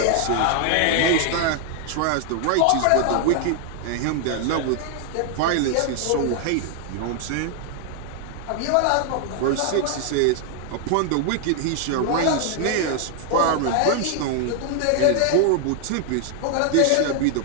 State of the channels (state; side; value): different; both; correlation 0.00